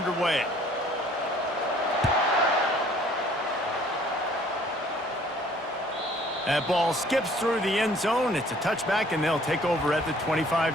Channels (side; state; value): both; normal; correlation 0.56